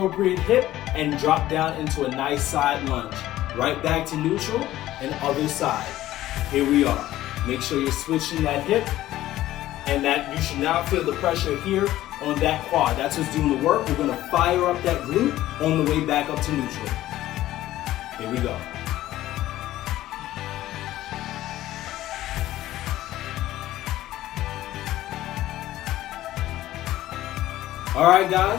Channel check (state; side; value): quieter; right; 14.6 dB